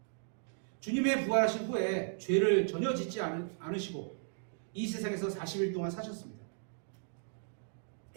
주님의 부활하신 후에 죄를 전혀 짓지 않으시고 이 세상에서 40일 동안 사셨습니다.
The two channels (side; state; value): left; silent; digital silence